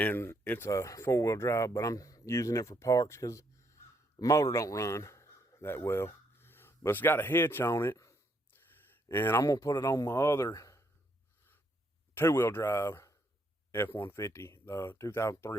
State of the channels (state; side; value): normal; both; correlation 0.73